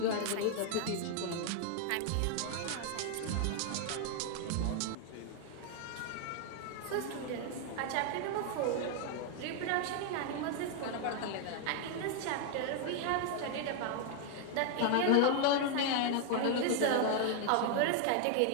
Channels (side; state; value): both; different; correlation 0.00